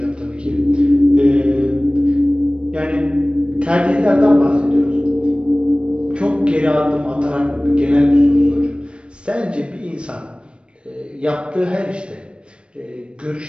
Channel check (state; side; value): late; left; 0.058 ms